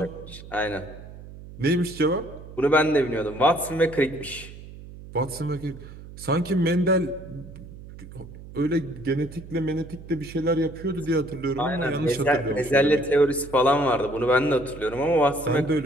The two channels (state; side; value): noise; right; hum, 16 dB below the sound